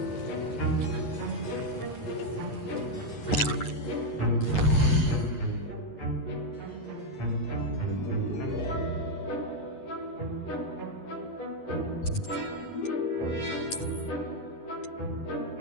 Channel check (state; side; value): late; right; 9.7 ms